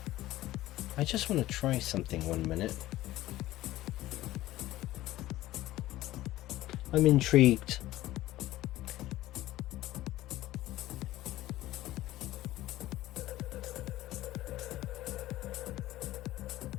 I just want to try something 1 minute. I'm intrigued.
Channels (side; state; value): right; quieter; 15.7 dB